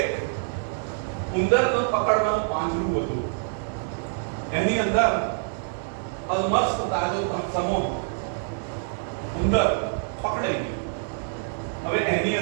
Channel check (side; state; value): left; silent; digital silence